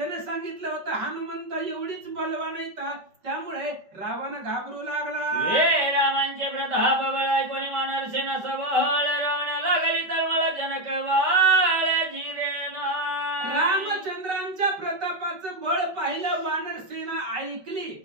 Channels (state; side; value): late; left; 5.2 ms